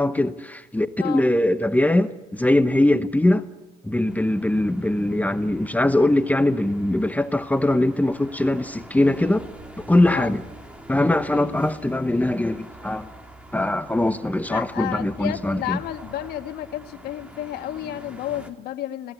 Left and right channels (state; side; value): normal; both; correlation 0.92